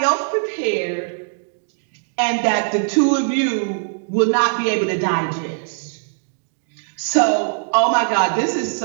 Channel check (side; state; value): left; silent; digital silence